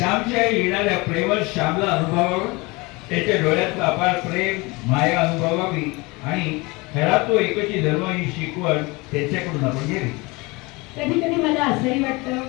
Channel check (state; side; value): quieter; right; 24.9 dB